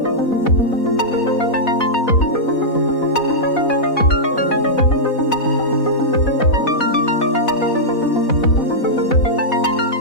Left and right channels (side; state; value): right; late; 4.1 ms